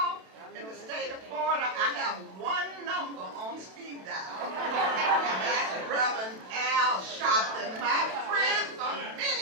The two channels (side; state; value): left; late; 32 ms